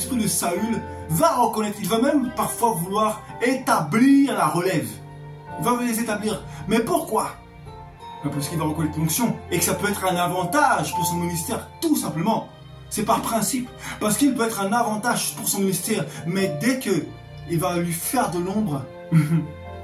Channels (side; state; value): both; identical; correlation 1.00